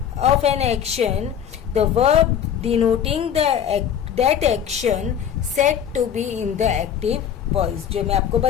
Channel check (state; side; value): quieter; right; 8.8 dB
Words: an action, the verb denoting that action set to be in the active voice, जो मैं आपको